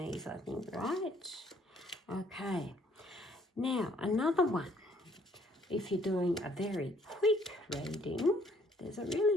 I think, right? Okay. Now, another one. If you're doing a very quick reading, there's a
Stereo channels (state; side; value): normal; both; correlation 0.63